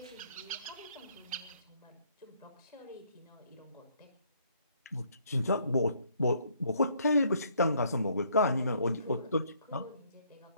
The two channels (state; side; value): inverted; both; correlation -0.66